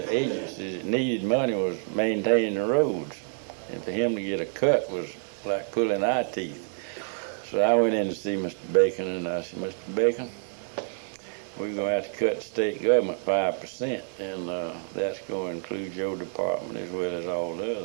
agencies that needed money was maintaining the roads. And for him to get a cut was like pulling eye teeth. So I went in to see Mr. Bacon, and I said, Mr. Bacon, we're going to have to cut the state government 5%, and that's going to include your department as well as all the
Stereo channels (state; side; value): silent; left; 57 dB below the other